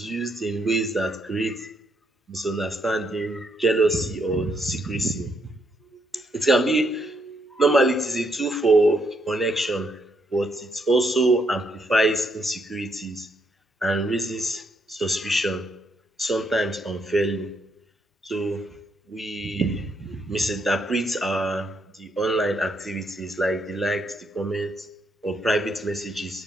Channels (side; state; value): both; normal; correlation 0.75